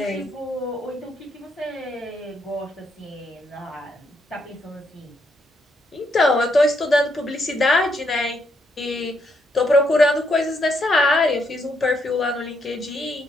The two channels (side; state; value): both; normal; correlation 0.76